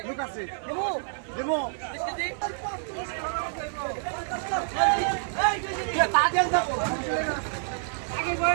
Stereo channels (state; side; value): silent; left; digital silence